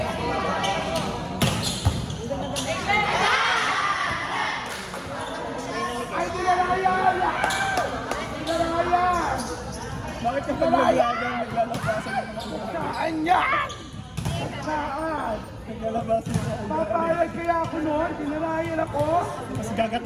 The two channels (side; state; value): both; identical; correlation 1.00